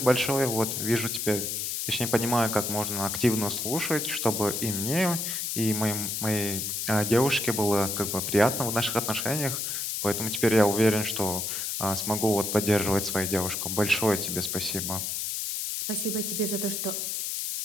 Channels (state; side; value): noise; left; hiss, 2 dB below the sound